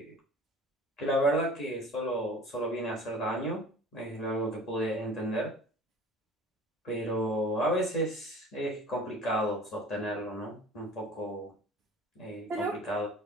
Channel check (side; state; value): both; normal; correlation 0.44